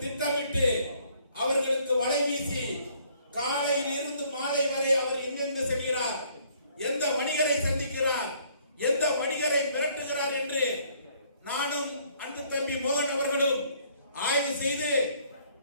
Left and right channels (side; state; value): both; inverted; correlation -0.62